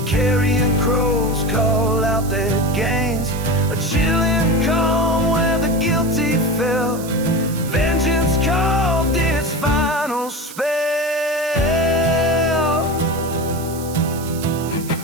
carrion crows call out their gains. A chilling calm where the guilty fell, vengeance carved its final spell.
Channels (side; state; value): right; noise; hiss, 15 dB below the sound